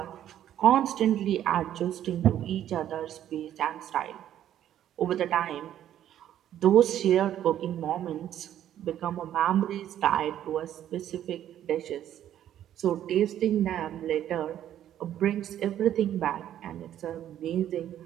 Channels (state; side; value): quieter; left; 11.2 dB